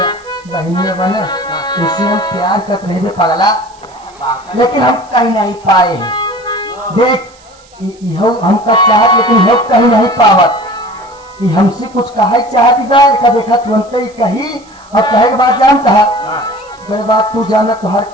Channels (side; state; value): right; noise; hiss, 28 dB below the sound